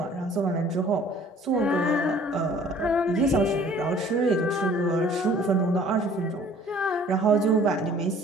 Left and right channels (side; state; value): both; normal; correlation 0.53